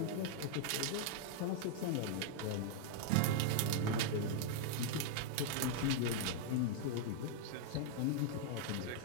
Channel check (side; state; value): both; different; correlation -0.01